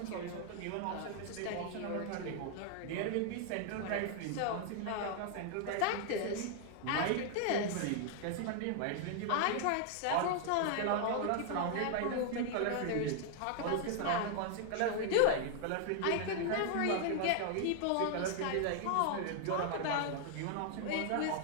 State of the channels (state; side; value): different; both; correlation 0.00